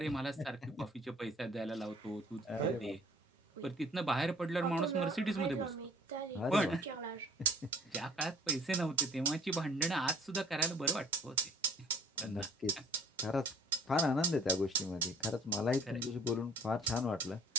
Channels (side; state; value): both; normal; correlation 0.52